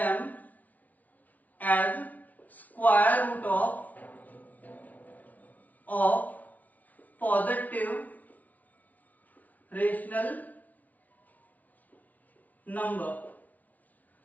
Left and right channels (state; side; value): late; right; 0.074 ms